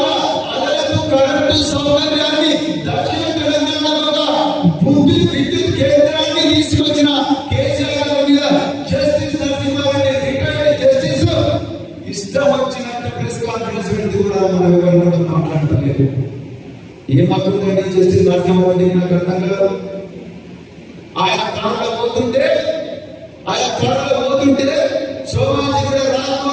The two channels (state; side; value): identical; both; correlation 1.00